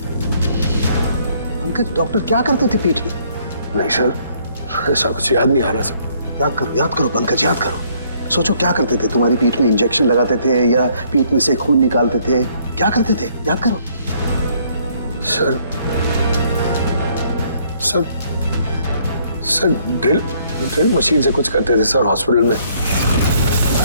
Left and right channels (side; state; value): both; inverted; correlation -0.65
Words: पंकज, डॉक्टर क्या करते थे पीठ में? नहीं सर, ऐसा कुछ याद नहीं आ रहा सर। याद करो पंकज, याद करो। सोचो क्या करते थे? तुम्हारी पीठ में इंजेक्शन लगाते थे या पीठ में से खून निकालते थे? क्या करते थे? याद करो। Sir sir sir drill machine से कुछ करते थे सर हॉस्पिटल में।